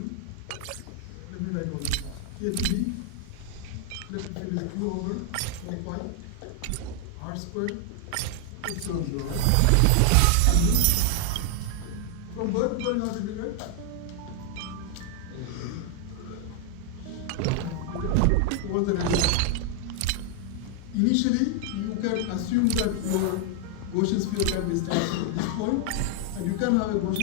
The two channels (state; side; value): different; both; correlation 0.00